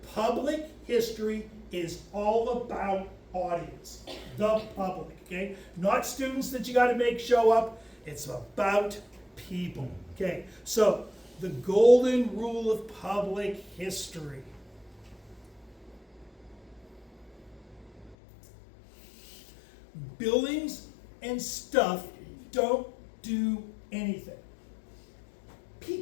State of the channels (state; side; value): drops out; right; at 18.2 s